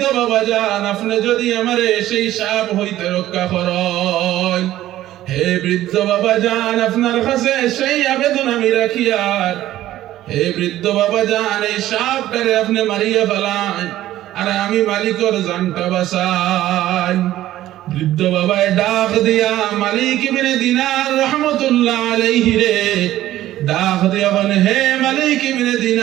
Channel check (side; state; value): left; quieter; 14.0 dB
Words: বাবাজান আপনি যদি আমারে সেই সাপ হইতে রক্ষা করেন, হে বৃদ্ধ বাবাজান আপনার কাছে সেই আবেদন আমি রাখি, আর হে বৃদ্ধ বাবাজান এই সাপটারে আপনি মারিয়া ফেলান আর আমি মালিকের জানটা বাঁচাই। বৃদ্ধ বাবায় ডাক দিয়া মালিক ইবনে দিনার রাহমাতুল্লাহ আলাইহি রে ডাক দিয়া বলে, হে মালিক ইবনে